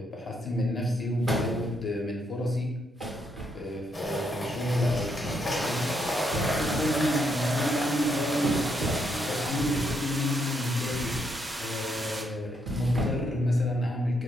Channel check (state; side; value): normal; both; correlation 0.76